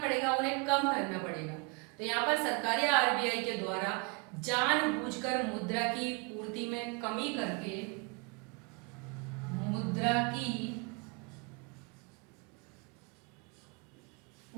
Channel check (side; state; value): left; quieter; 31.0 dB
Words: उन्हें कम करना पड़ेगा। तो यहाँ पर सरकार या आरबीआई के द्वारा जानबूझकर मुद्रा की पूर्ति में कमी करके, मुद्रा की